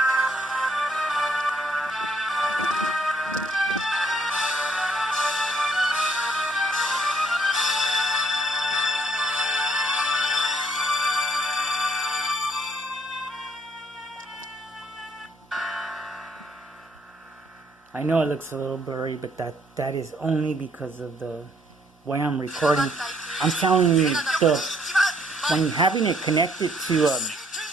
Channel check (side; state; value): both; normal; correlation 0.66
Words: I know it looks a little blurry, but that is only because of the way I'm recording. I'm telling you, when having it connected to